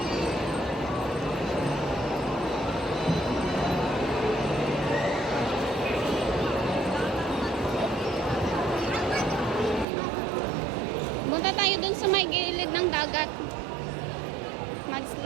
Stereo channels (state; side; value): drops out; left; at 9.9 s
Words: Punta tayo dun sa may gilid ng dagat.